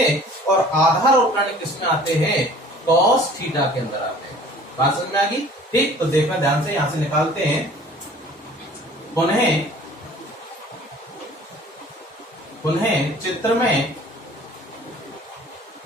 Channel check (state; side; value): normal; both; correlation 0.49